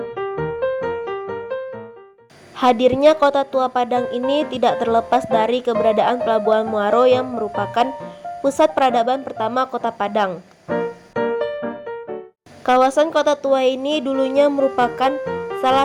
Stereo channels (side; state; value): both; identical; correlation 1.00